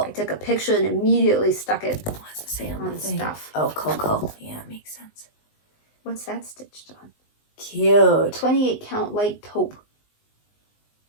took a picture and immediately stuck it What's it say on the thing? stuff. Oh, Coco. Yeah, makes sense. What's that stitched on? Cute. 28 count light taupe.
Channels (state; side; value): late; right; 19 ms